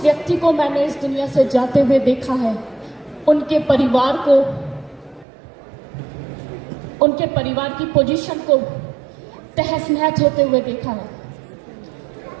व्यक्ति को मैंने इस दुनिया से जाते हुए देखा है, उनके परिवार को, उनके परिवार की पोजीशन को तहस नहस होते हुए देखा है।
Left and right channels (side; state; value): left; drops out; at 5.2 s